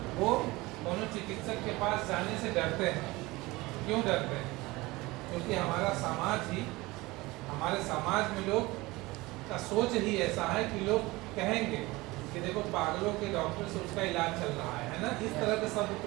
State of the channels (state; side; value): quieter; left; 21.2 dB